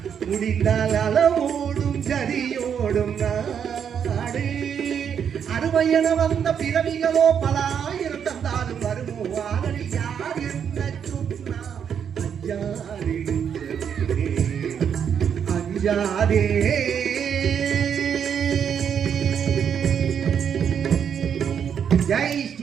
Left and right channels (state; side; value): quieter; left; 7.9 dB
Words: முடிந்தால் அளவோடும் ஜதியோடும் நாடு அருமையென வந்த பிறவிகளோ பல ஆயிரம் தந்தாலும் வருமோ ஆதரி யார் என்ன சொன்னா அஞ்சாதே அஞ்சாதே ஜெய்